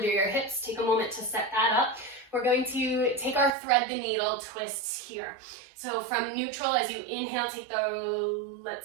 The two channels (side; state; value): left; drops out; at 3.5 s